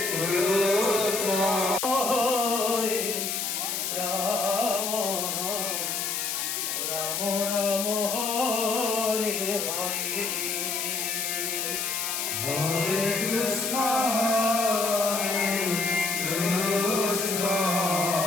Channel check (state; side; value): noise; left; hiss, 1 dB below the sound